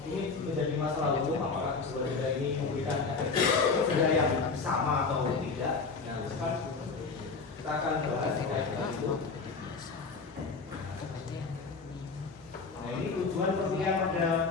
ini menjadi masalah hukum apakah sebuah denda ini memberikan efek denda yang sama atau tidak. Nah, kan kita akan bahas terkait dengan itu. Nah, ini tujuan perkuliahan pada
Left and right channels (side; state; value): right; quieter; 4.5 dB